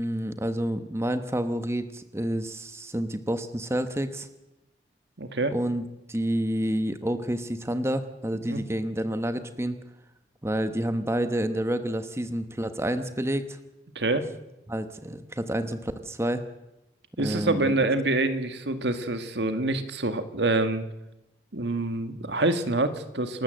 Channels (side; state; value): both; normal; correlation 0.57